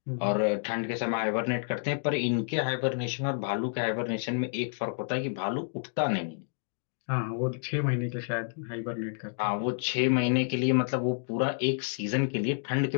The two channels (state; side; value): silent; right; digital silence